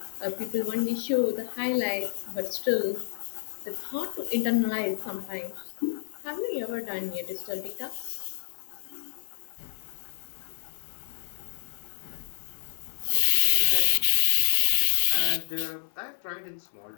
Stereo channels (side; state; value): right; silent; 59 dB below the other